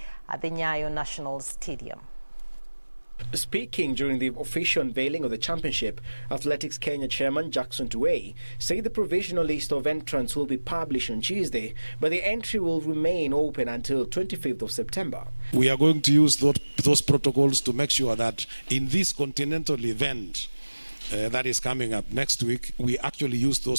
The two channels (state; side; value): inverted; both; correlation -1.00